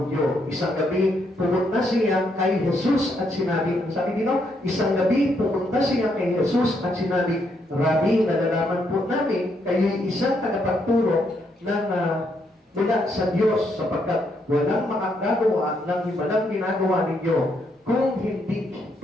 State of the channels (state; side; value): normal; both; correlation 0.76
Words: Isang gabi, pumunta siya kay Jesus at sinabi, ang sabi dito, isang gabi, pumunta siya kay Jesus at sinabi, Rabbi, nalalaman po namin, kayo'y isang tagapagturo ng mula sa Diyos sapagkat walang makagagawa ng walang ginagawa ninyo kung